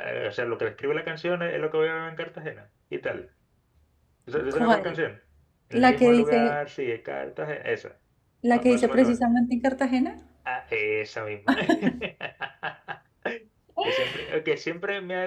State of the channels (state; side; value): identical; both; correlation 1.00